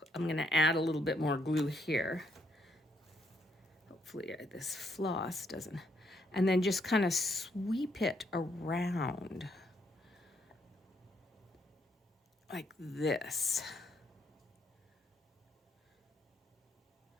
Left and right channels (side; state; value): both; normal; correlation 0.73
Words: I'm going to add a little bit more glue here. Hopefully this floss doesn't. And then just kind of sweep it around like this.